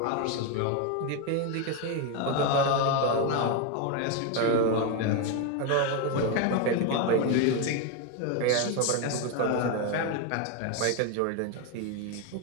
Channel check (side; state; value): both; different; correlation 0.02